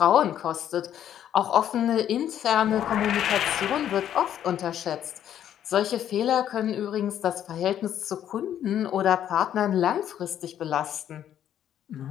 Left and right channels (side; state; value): right; quieter; 10.5 dB